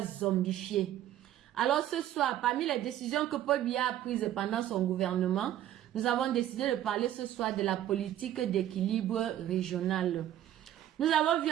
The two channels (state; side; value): quieter; left; 12.2 dB